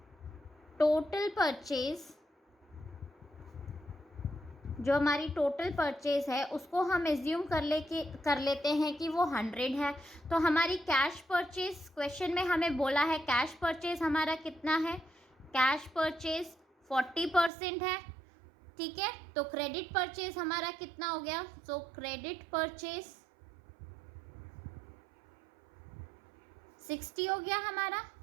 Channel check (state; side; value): drops out; left; at 17.5 s